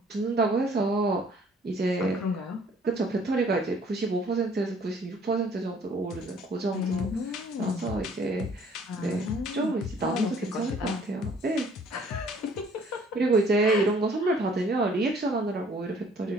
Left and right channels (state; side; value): normal; both; correlation 0.58